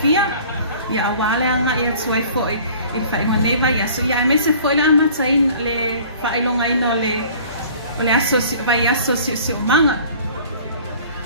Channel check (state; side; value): inverted; both; correlation -0.49